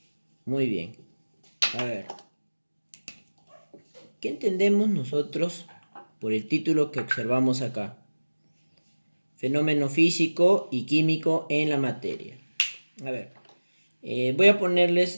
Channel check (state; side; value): inverted; both; correlation -1.00